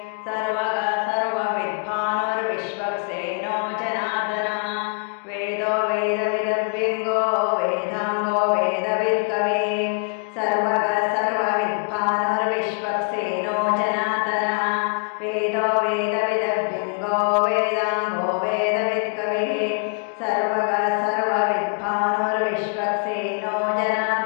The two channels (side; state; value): right; quieter; 38.0 dB